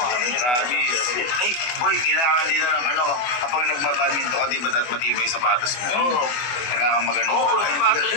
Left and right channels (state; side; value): late; right; 24 ms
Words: Ay, boy, kailangan din ng ano, kapag nagbabadminton ka, di ba dapat matibay yung sapatos mo? Oo. Kailangan magano. Oo,